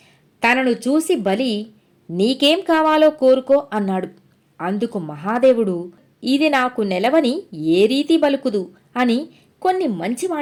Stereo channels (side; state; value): both; identical; correlation 1.00